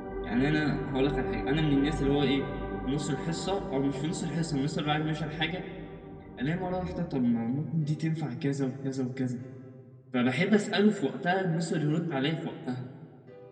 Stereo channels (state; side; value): identical; both; correlation 1.00